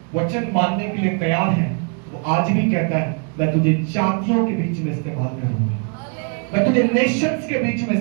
वचन मानने के लिए तैयार है, तो आज भी कहता है मैं तुझे जातियों के बीच में इस्तेमाल करूंगा, मैं तुझे नेशंस के बीच में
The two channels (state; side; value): quieter; left; 39.4 dB